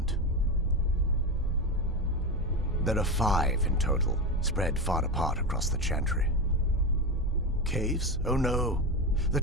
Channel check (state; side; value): normal; both; correlation 0.17